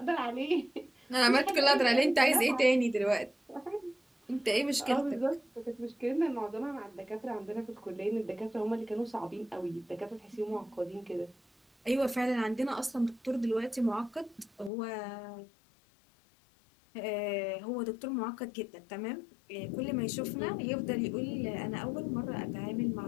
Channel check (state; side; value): drops out; right; at 14.7 s